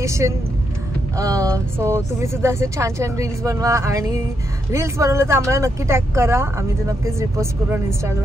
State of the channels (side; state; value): both; normal; correlation 0.81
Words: सो तुम्ही सुद्धा असे छान छान रील्स बनवा आणि रील्स बनवलं तर आम्हाला नक्की टॅग करा, आम्ही ते नक्कीच रिपोस्ट करू ऑन